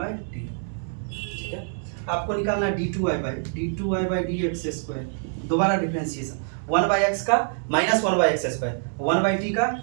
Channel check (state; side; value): silent; left; 61 dB below the other